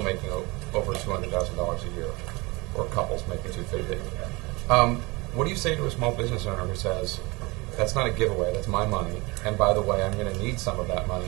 making over $200,000 a year, or couples making $250,000. What do you say to a small business owner who says, "That's not a giveaway, that's my money, and by the way, I'm going to need some of that money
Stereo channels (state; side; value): quieter; left; 24.8 dB